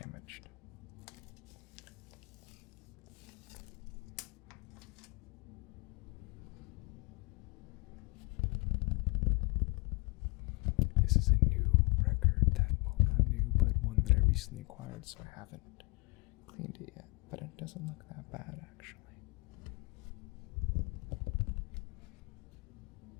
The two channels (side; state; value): right; quieter; 29.1 dB